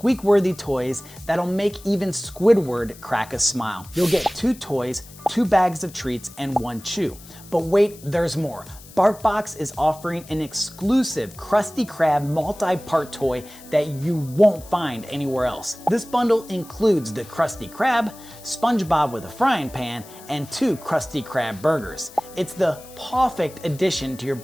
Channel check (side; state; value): left; noise; hiss, 20 dB below the sound